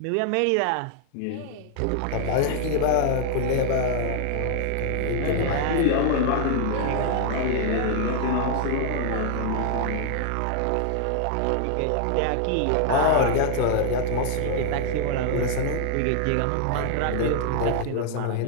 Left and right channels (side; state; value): both; different; correlation 0.00